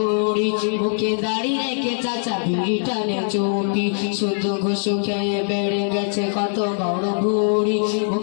বুকে দাঁড়িয়ে রেখে চাচা বিড়ি টানে চুপি। শুধু ঘুষ খেয়ে বেড়ে গেছে কত বড় ভুড়ি,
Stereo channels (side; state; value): right; silent; digital silence